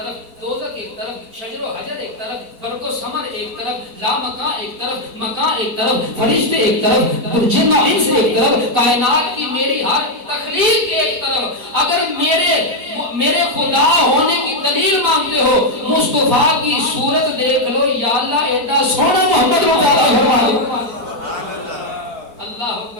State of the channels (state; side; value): late; left; 4.1 ms